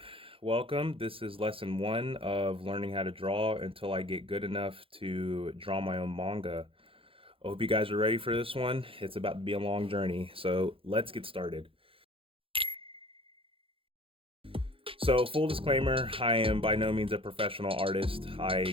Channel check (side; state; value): left; late; 0.27 ms